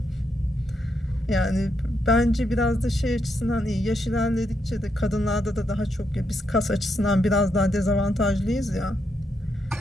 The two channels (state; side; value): normal; both; correlation 0.80